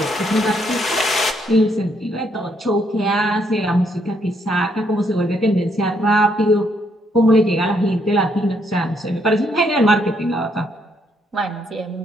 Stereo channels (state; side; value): normal; both; correlation 0.72